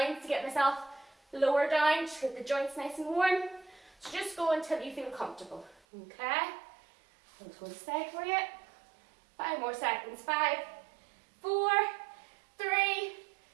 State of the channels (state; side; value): drops out; left; at 5.8 s